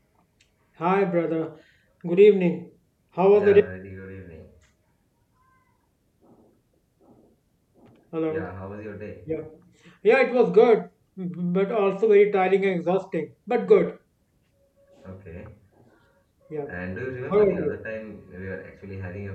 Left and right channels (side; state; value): both; identical; correlation 1.00